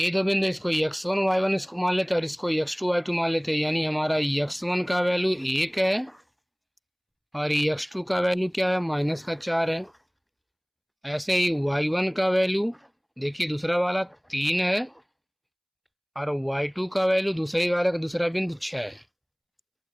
दो बिंदु, इसको x1 y1 इसको मान लेते हैं और इसको x2 y2 मान लेते हैं। यानी हमारा x1 का वैल्यू 1 है और x2 का वैल्यू क्या है, -4 है। ऐसे ही y1 का वैल्यू देखिए दूसरा वाला 3 है और y2 का वैल्यू दूसरे वाले का दूसरा बिंदु 6 है।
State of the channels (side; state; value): both; identical; correlation 1.00